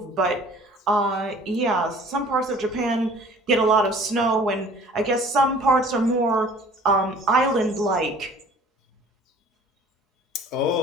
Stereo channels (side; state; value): both; normal; correlation 0.49